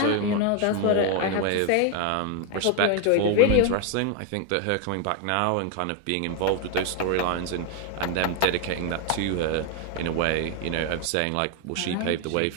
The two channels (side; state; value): both; different; correlation 0.01